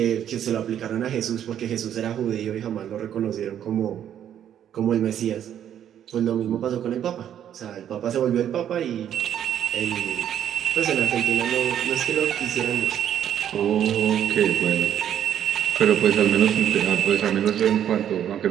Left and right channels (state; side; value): quieter; left; 10.0 dB